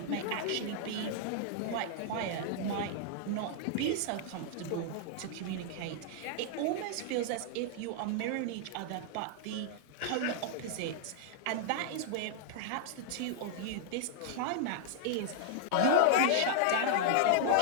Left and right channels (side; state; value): both; different; correlation -0.01